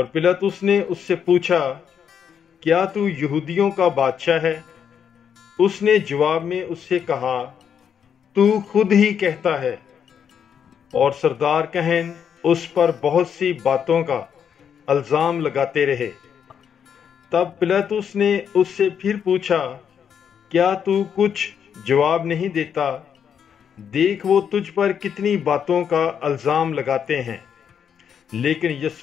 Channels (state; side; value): quieter; right; 7.9 dB